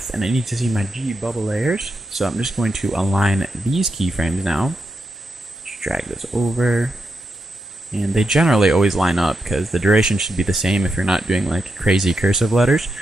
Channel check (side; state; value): both; normal; correlation 0.85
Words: and I need to see my G bubble layers. So I'm just going to align these keyframes now. Just drag this over. And they generally always line up because the duration should be the same if you're not doing like crazy cursive letters,